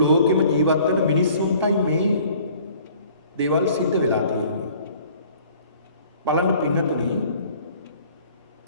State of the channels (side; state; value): both; inverted; correlation -0.53